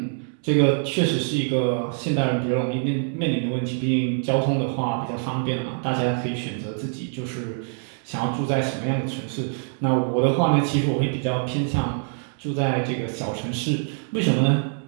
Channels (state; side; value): silent; left; 62 dB below the other